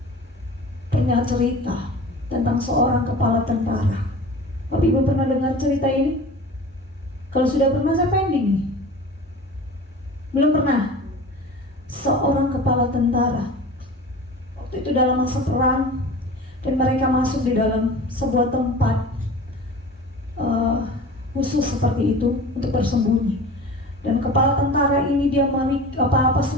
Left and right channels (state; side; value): normal; both; correlation 0.38